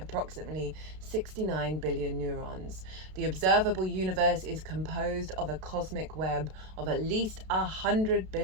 69 billion neurons. The observable universe is composed of a cosmic web of at least 100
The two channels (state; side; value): late; left; 32 ms